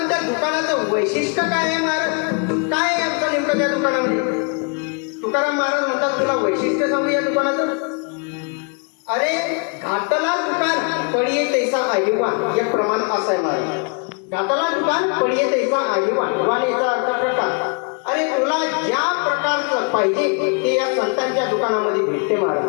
त्या दुकानाचं वैशिष्ट्य काय आहे महाराज? काय आहे आमचं नेमकं त्या दुकानामध्ये? तुकाराम महाराज म्हणतात, तुला वैशिष्ट्य सांगू या दुकानाचं. अरे घातला दुकान पडिये तैसा आईवान, एक प्रमाण असं आहे महाराज. घातला दुकान पडिये तैसा आईवान, वान याचा अर्थ प्रकार. अरे तुला ज्या प्रकारचं पाहिजे ते या संतांच्या दुकानामध्ये भेटते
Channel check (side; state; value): right; quieter; 37.1 dB